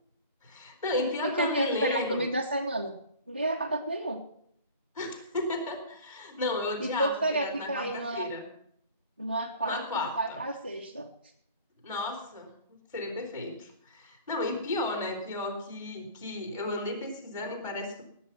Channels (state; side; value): inverted; both; correlation -0.42